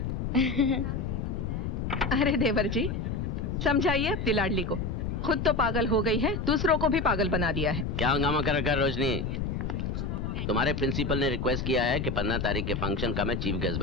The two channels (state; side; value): noise; left; rumble, 3 dB below the sound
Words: अरे देवर जी, समझाइए अपनी लाडली को। खुद तो पागल हो गई है, दूसरों को भी पागल बना दिया है। क्या हंगामा कर रखा है रोशनी? तुम्हारे प्रिंसिपल ने रिक्वेस्ट किया है कि 15 तारीख के फंक्शन का मैं चीफ गेस्ट